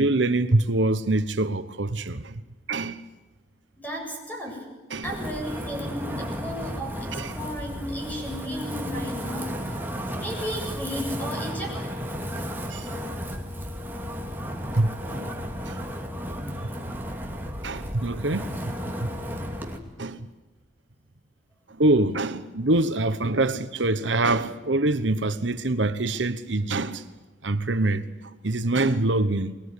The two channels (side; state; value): both; normal; correlation 0.48